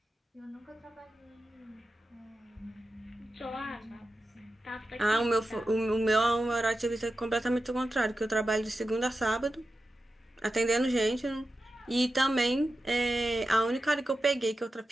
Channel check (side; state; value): both; normal; correlation 0.91